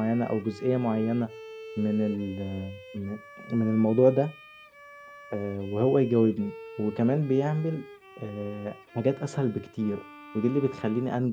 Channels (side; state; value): both; identical; correlation 1.00